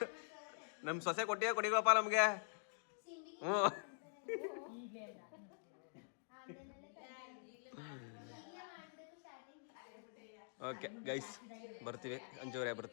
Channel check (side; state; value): right; silent; digital silence